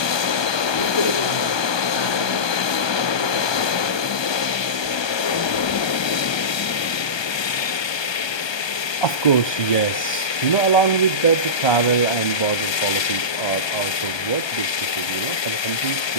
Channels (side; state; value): right; late; 1.2 ms